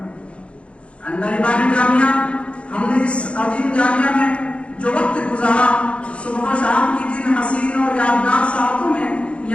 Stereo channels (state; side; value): late; right; 0.060 ms